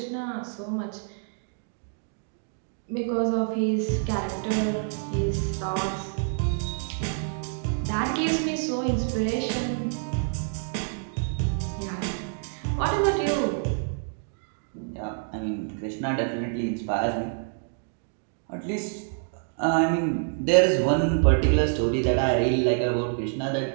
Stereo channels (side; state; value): left; silent; digital silence